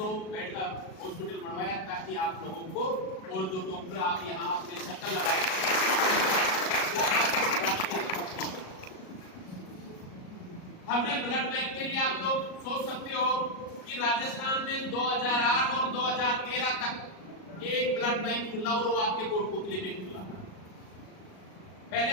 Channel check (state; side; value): late; right; 37 ms